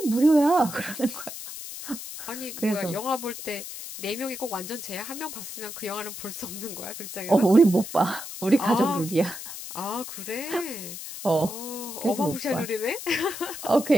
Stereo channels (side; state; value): left; noise; hiss, 10 dB below the sound